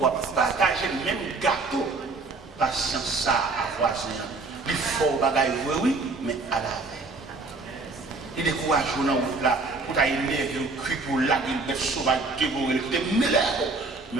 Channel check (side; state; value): left; quieter; 3.7 dB